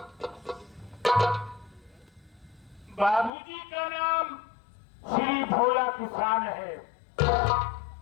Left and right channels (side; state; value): right; drops out; at 3.3 s